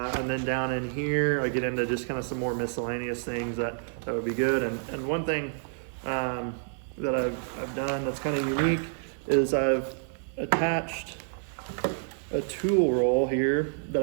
then down in here, I get into just kind of some more miscellaneous things that would be good. And one thing that I've done that's kind of unique is I've attached a tool roll here that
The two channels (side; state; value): left; silent; digital silence